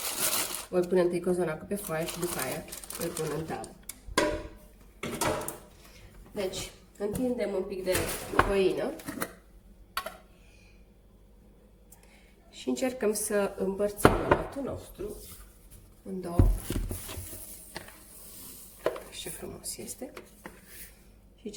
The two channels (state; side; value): identical; both; correlation 1.00